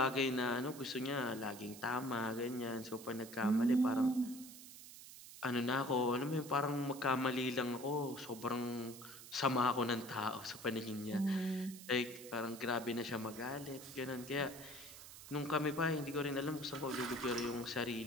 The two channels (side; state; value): right; noise; hiss, 15 dB below the sound